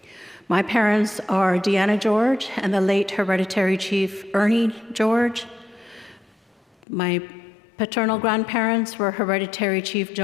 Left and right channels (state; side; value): drops out; right; at 6.9 s